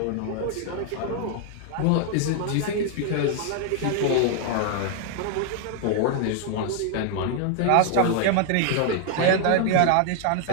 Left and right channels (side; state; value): both; different; correlation 0.00